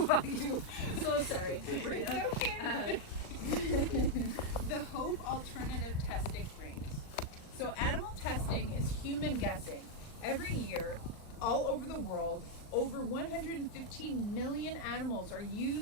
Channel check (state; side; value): late; right; 39 ms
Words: you. So sorry, Sabrina. It's okay. The hope alternative testing rings. So animal testing is human guessing. Every year, all over the world, over 115 million animals are